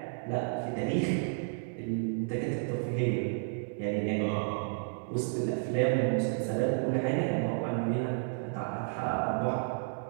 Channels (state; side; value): silent; left; digital silence